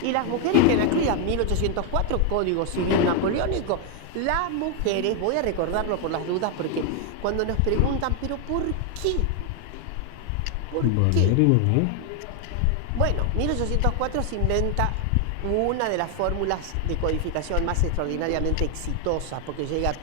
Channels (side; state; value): both; different; correlation 0.00